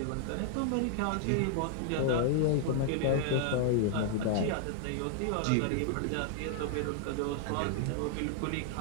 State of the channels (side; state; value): both; different; correlation -0.01